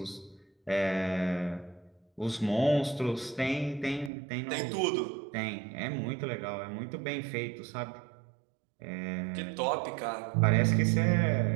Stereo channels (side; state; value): left; drops out; at 4.1 s